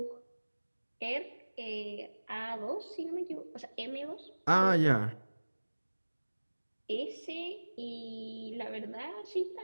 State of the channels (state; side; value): inverted; both; correlation -1.00